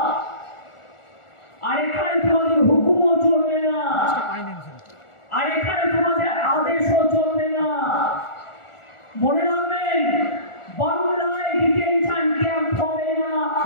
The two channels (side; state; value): right; late; 1.4 ms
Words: আর এখানে তোমাদের হুকুমও চলবে না, আর এখানে তোমাদের আদেশও চলবে না। মনে রাখবেন, বাংলায়